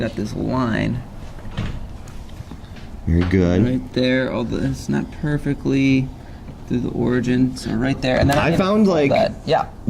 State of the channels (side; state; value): both; identical; correlation 1.00